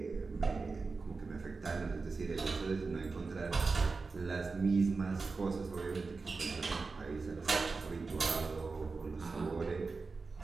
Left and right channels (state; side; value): quieter; left; 4.2 dB